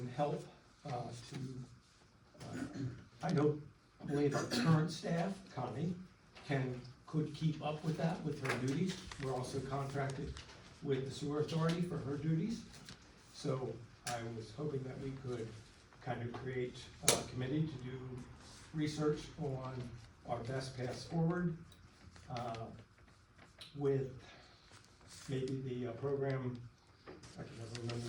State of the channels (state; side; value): identical; both; correlation 1.00